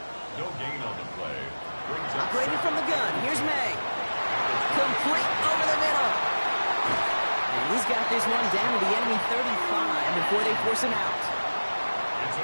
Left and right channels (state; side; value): inverted; both; correlation -1.00